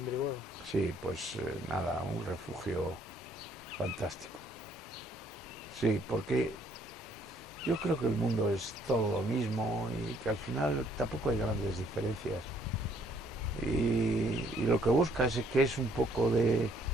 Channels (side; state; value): both; normal; correlation 0.65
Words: Brihuega? Sí, pues nada, un refugio fantástico. Sí, porque yo creo que el mundo es todo lo mismo y que al final tampoco hay grandes diferencias. Y lo que buscas es que es un poco de